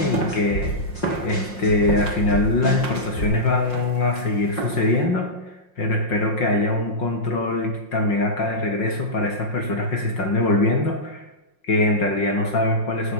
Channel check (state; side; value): late; right; 5.6 ms